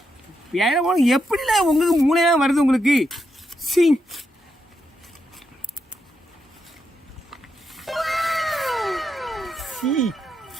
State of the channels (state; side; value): normal; both; correlation 0.82